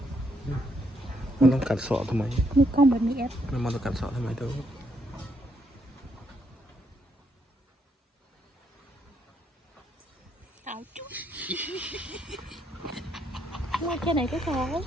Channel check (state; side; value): normal; both; correlation 0.75